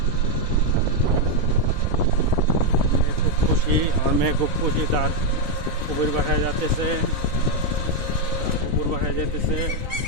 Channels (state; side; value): late; left; 3.7 ms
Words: খুব খুশি, আমার মেয়ে খুব খুশি, তার কুকুর বাসায় যাচ্ছে, কুকুর বাসায় যেতেছে